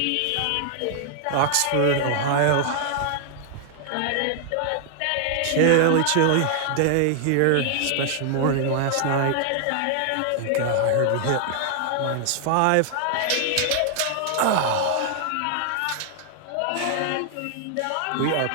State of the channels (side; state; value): both; different; correlation 0.00